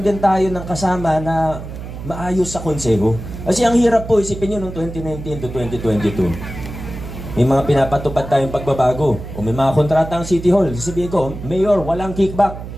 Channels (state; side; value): noise; right; hum, 10 dB below the sound